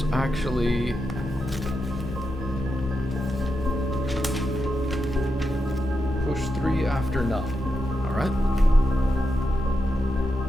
actually... push 3 after 9. Alright.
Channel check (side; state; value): both; normal; correlation 0.87